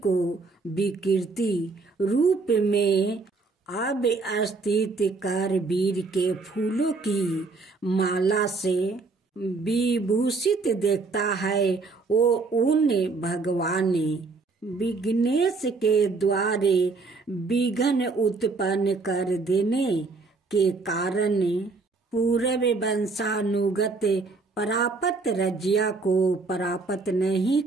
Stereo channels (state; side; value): quieter; left; 4.0 dB